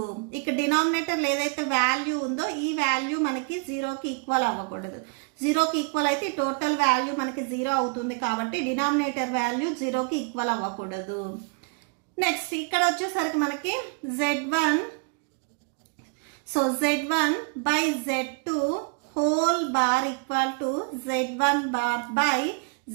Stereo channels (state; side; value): quieter; left; 32.6 dB